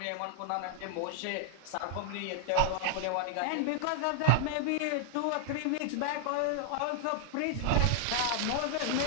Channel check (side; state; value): both; different; correlation 0.00